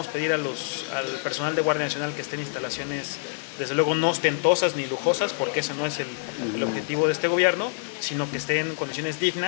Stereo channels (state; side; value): silent; right; digital silence